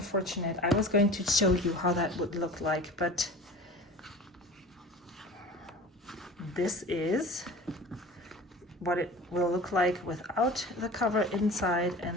I was going to show you how that would look like, but this is what it will look like without the cover inside.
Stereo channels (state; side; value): normal; both; correlation 0.38